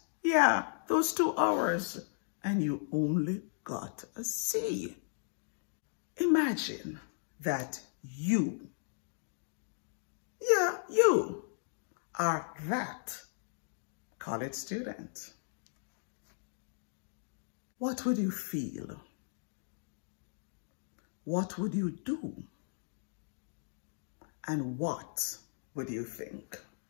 Yeah, those 2 hours. And you only got a C. Imagine that you are that college student. What would you feel? What would you do? And what would you think?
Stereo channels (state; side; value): silent; right; digital silence